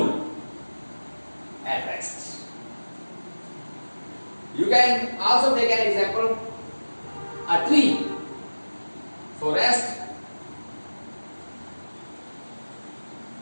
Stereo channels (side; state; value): both; inverted; correlation -1.00